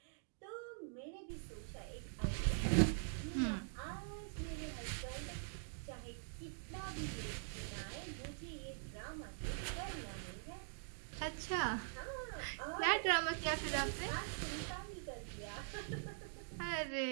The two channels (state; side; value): silent; left; digital silence